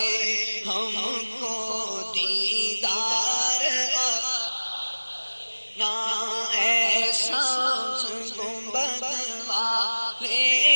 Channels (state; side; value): inverted; both; correlation -1.00